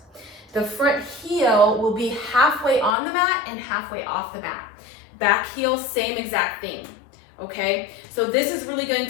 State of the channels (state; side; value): drops out; right; at 3.0 s